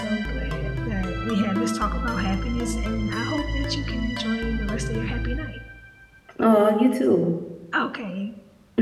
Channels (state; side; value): identical; both; correlation 1.00